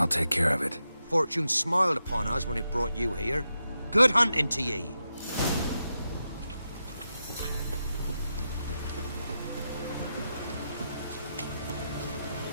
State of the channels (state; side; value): inverted; both; correlation -0.87